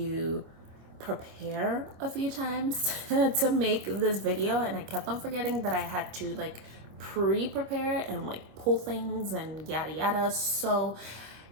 prepare a few times to make this video, and I kept on forgetting that I had to like pre-prepare and like pull things and yada yada. So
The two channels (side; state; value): left; late; 26 ms